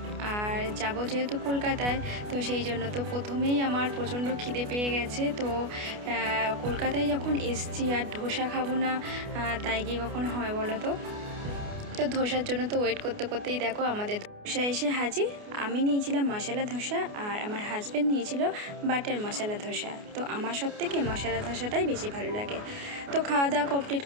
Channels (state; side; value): late; left; 29 ms